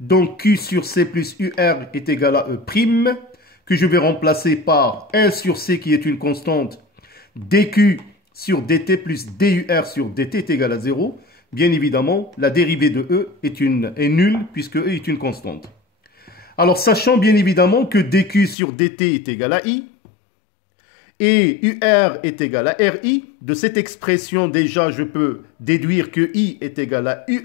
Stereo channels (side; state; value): right; drops out; at 18.6 s